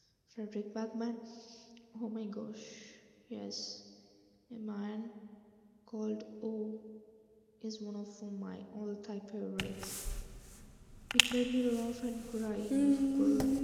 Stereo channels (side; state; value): both; identical; correlation 1.00